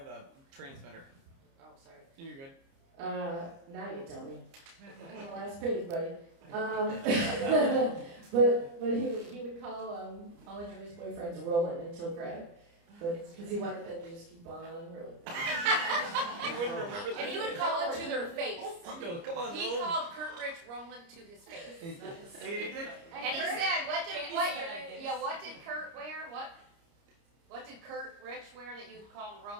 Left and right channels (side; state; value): left; late; 29 ms